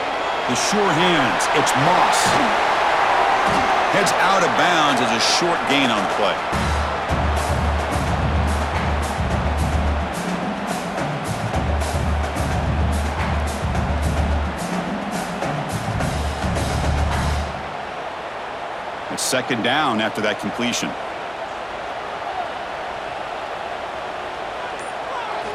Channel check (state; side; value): identical; both; correlation 1.00